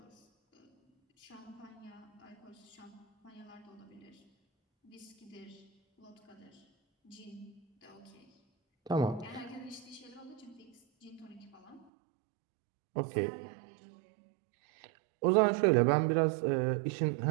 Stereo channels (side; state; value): left; drops out; at 11.9 s